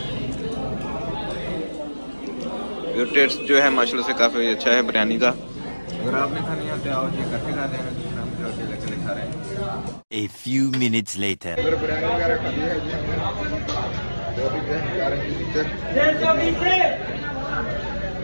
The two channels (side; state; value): both; inverted; correlation -1.00